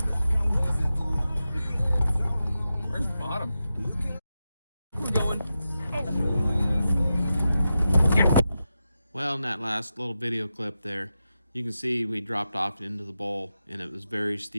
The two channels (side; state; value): both; inverted; correlation -0.90